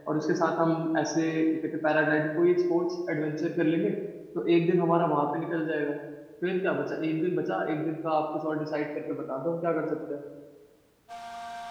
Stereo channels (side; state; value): both; identical; correlation 1.00